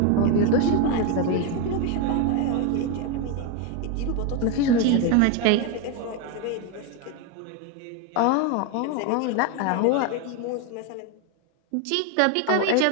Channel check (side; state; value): both; different; correlation 0.02